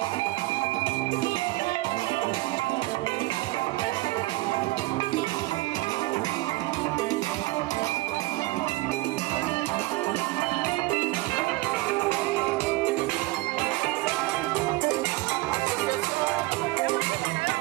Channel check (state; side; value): quieter; left; 20.7 dB